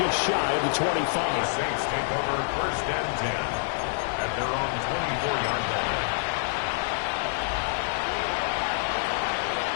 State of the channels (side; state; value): right; silent; 58 dB below the other